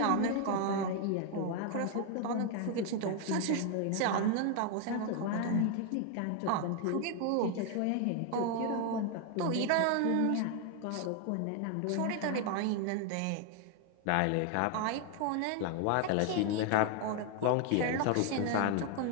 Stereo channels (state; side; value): different; both; correlation 0.01